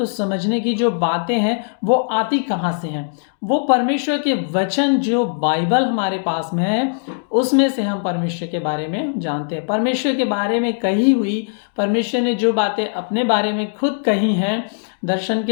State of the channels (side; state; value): right; silent; digital silence